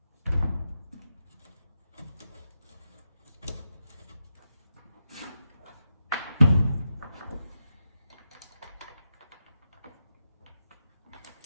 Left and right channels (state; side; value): inverted; both; correlation -0.88